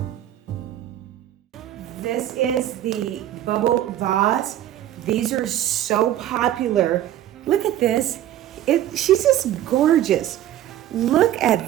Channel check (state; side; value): quieter; left; 12.4 dB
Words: This is the bubble vase. These are so popular. Look at this. She's just gorgeous. Look